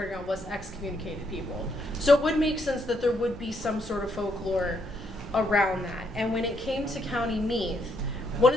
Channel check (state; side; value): normal; both; correlation 0.74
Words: ground was excommunicated people. So it would make sense that there would be some sort of folklore around that. And when it came to County Meath, one